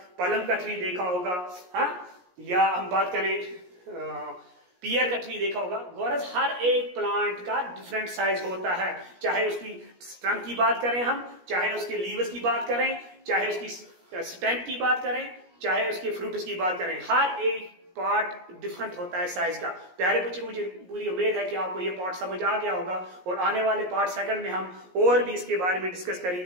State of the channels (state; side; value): late; left; 17 ms